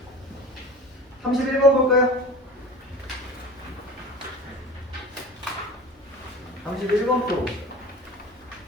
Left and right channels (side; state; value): both; normal; correlation 0.37